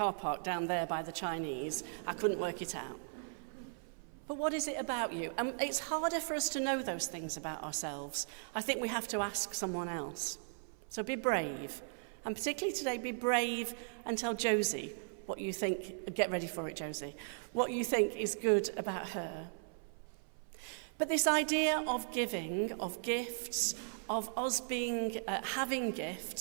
park down there by the Chinese. I couldn't work it out. But what is it about you? And it's harder for us to know those things about ourselves. I think we have to ask someone else. So be brave. And particularly today, be brave and tell Josie what you think. Get ready for it, Josie. What you think is good about her. But this idea of giving, of gifts, of us being having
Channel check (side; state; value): left; silent; 53 dB below the other